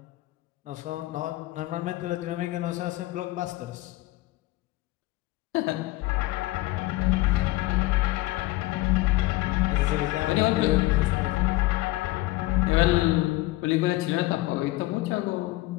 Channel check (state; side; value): quieter; right; 19.0 dB